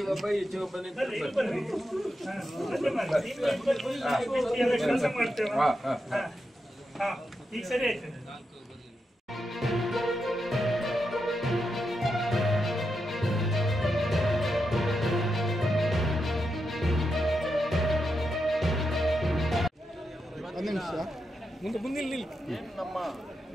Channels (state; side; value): normal; both; correlation 0.86